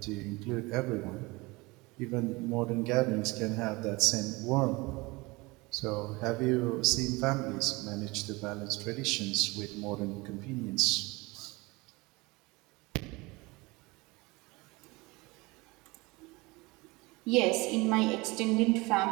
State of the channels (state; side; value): quieter; left; 23.9 dB